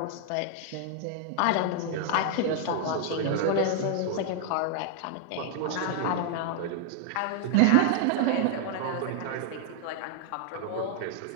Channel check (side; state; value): both; different; correlation 0.00